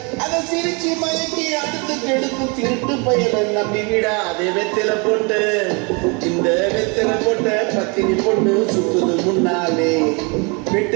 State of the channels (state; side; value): quieter; left; 31.4 dB